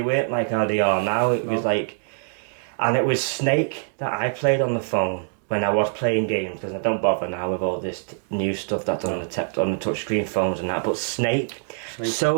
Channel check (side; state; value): left; silent; digital silence